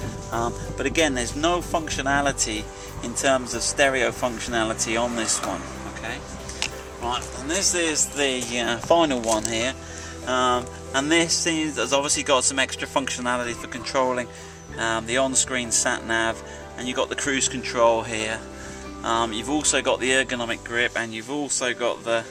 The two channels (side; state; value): both; identical; correlation 1.00